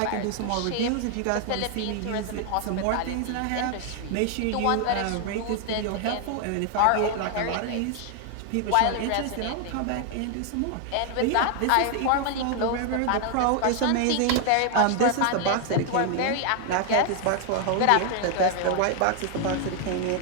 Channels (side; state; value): both; different; correlation 0.00